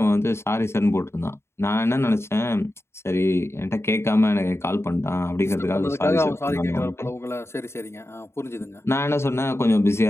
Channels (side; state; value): right; late; 0.12 ms